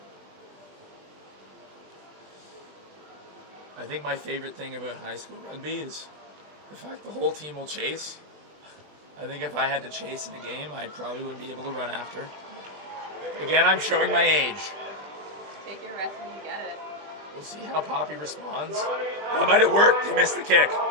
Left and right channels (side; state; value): left; late; 20 ms